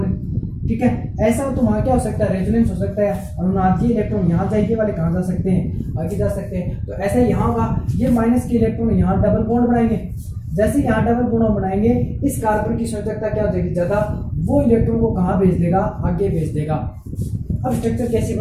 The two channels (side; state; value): both; identical; correlation 1.00